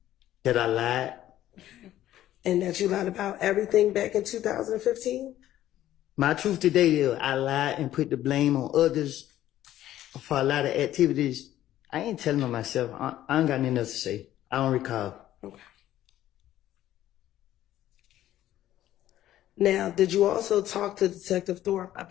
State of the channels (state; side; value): quieter; right; 13.1 dB